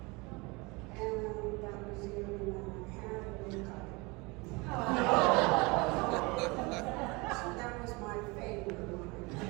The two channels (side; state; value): left; quieter; 26.1 dB